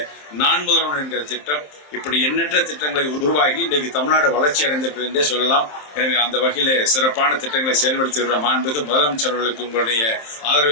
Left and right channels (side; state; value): right; late; 27 ms